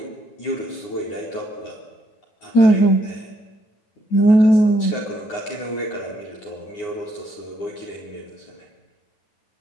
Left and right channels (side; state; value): right; late; 9.7 ms